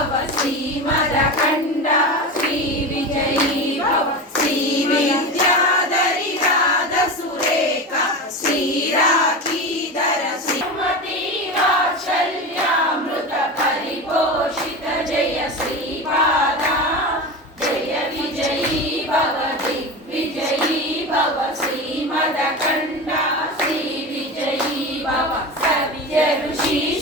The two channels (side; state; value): both; normal; correlation 0.25